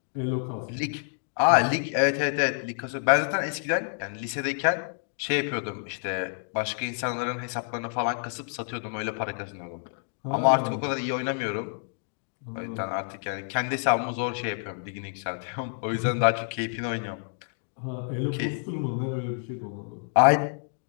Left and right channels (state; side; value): silent; right; digital silence